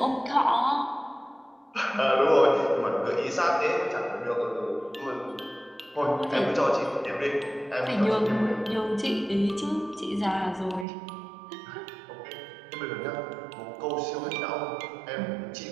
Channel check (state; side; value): drops out; left; at 10.9 s